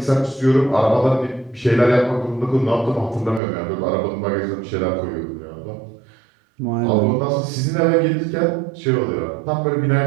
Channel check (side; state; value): left; drops out; at 3.4 s